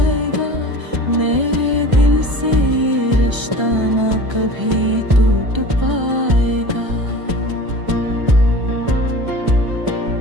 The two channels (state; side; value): late; left; 1.3 ms